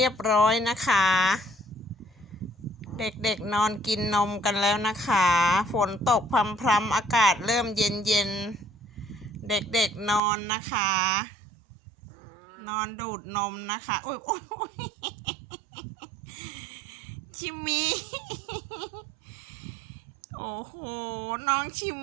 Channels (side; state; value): left; drops out; at 10.2 s